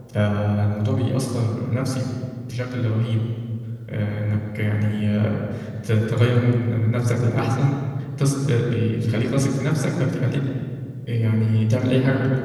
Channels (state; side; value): identical; both; correlation 1.00